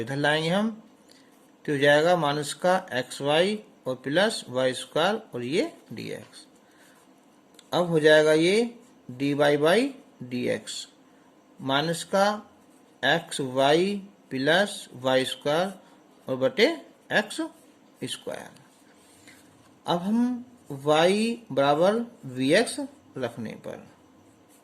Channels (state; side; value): identical; both; correlation 1.00